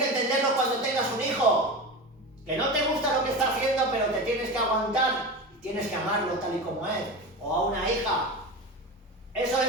entenderlo cuando tengas un hijo. Que no te gusta lo que está haciendo, pero te tienes que aguantar. Tienes que amarlo tal y como es. O a una hija. Eso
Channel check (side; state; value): both; normal; correlation 0.26